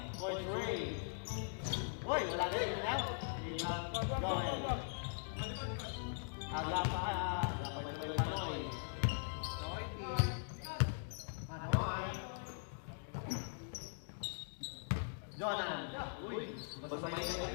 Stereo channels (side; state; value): right; silent; digital silence